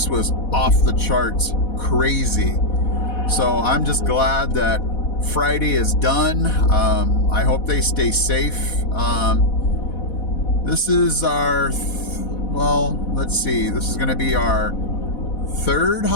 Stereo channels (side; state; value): right; late; 4.1 ms